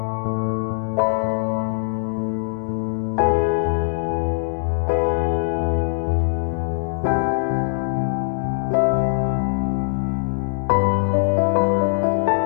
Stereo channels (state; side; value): silent; right; digital silence